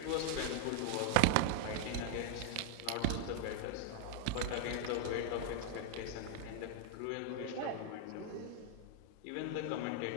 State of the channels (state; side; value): different; both; correlation 0.00